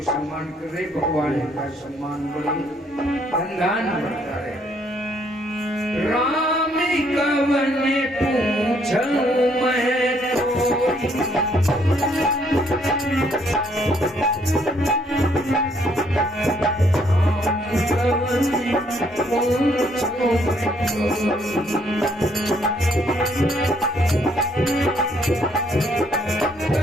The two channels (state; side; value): normal; both; correlation 0.68